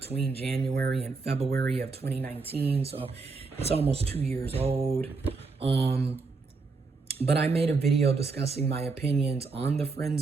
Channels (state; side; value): quieter; left; 4.3 dB